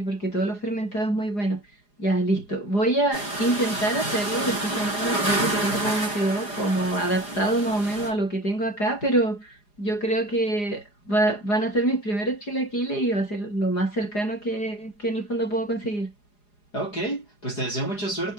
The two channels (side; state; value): right; late; 4.9 ms